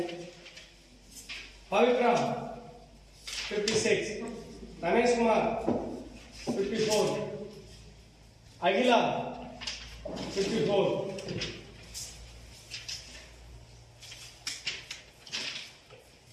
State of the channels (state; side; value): identical; both; correlation 1.00